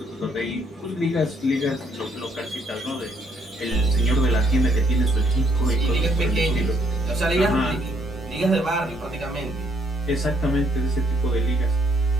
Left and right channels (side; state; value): both; normal; correlation 0.69